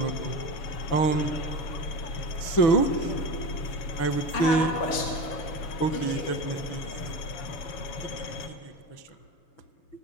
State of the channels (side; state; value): right; late; 6.9 ms